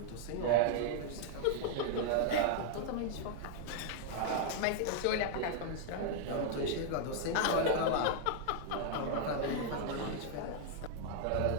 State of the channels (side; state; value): both; different; correlation 0.00